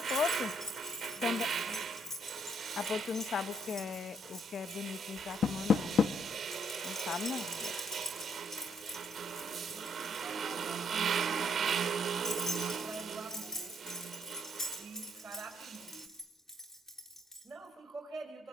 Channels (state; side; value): normal; both; correlation 0.69